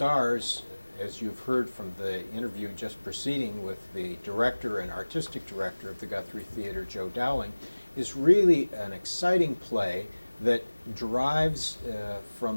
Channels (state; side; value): inverted; both; correlation -1.00